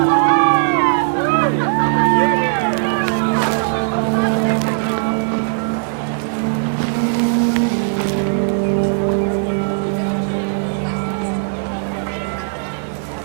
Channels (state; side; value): silent; left; digital silence